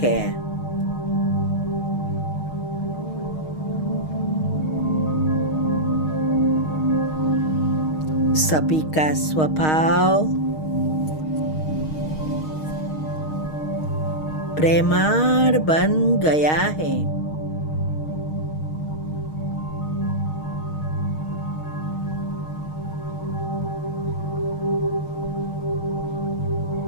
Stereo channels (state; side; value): late; right; 6.4 ms